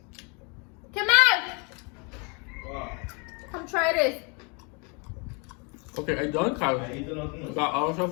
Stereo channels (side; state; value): right; quieter; 33.3 dB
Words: Come out! Come try this. Okay, I done, Kyle. I eat nothing. Got all